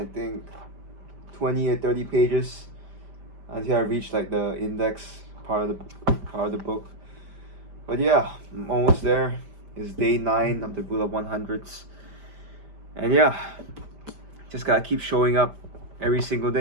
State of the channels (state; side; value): late; left; 5.1 ms